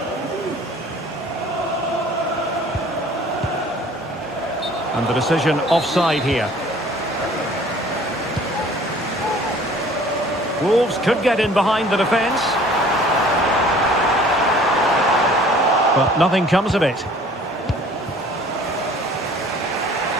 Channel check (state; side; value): normal; both; correlation 0.51